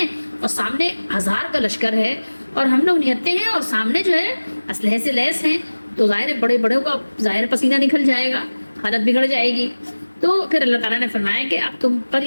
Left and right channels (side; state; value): both; inverted; correlation -1.00